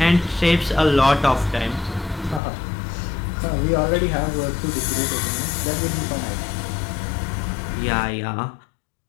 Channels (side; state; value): right; drops out; at 2.4 s